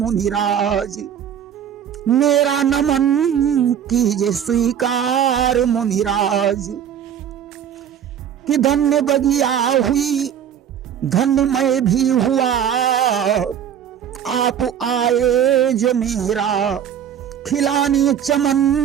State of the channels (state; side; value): quieter; left; 9.0 dB